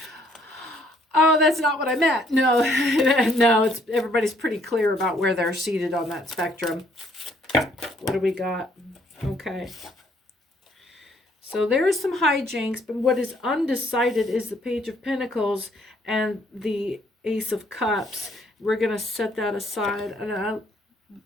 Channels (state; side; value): normal; both; correlation 0.66